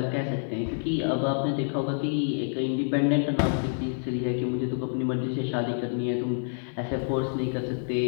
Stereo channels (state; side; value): silent; right; digital silence